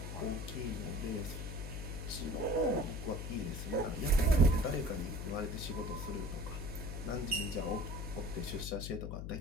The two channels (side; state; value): left; noise; hum, 5 dB below the sound